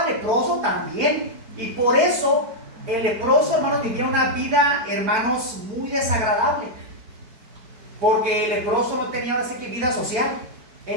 al leproso, también. Y por eso el leproso, hermanos, vivía una vida, hermanos, muy desagradable. Porque el leproso no tenía así que vida social.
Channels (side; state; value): left; late; 4.4 ms